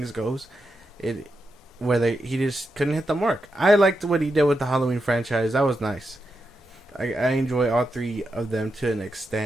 goes. Whether he just couldn't hit the mark. I liked what he did with the Halloween franchise. That was nice. I enjoy all three of them to an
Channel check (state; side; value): normal; both; correlation 0.86